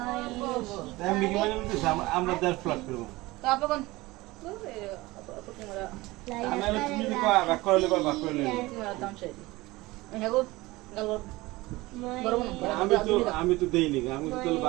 আমি কি মানে বলতেছি আমরা 10 প্লেট করব তো আপন আমি তুমি কি কয় বাক করলে বাক করলে দাম চাই হেগো গেল আমি তো দেইনি আমি তো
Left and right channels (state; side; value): quieter; left; 20.4 dB